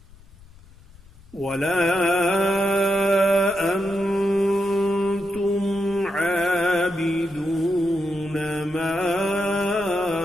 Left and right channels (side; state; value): left; noise; rumble, 24 dB below the sound